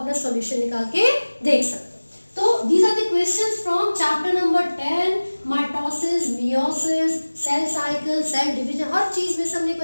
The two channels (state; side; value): inverted; both; correlation -1.00